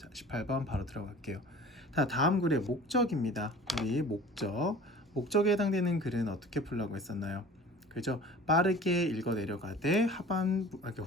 18번 바로 들어갈게요. 자, 다음 글의 목적입니다. 우리 목적에 해당되는 글은 어떻게 풀라고 했었나요? 그죠? 빠르게 읽어 내려가되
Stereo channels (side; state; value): both; normal; correlation 0.43